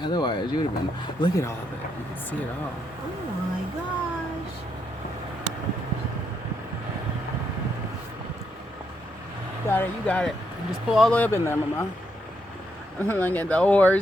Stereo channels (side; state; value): both; normal; correlation 0.78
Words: Otherwise, you would have been. Look at all of it. You can see it all. Oh my gosh. Got it. You got it. Just pull all the way up in there, Mama. Look at the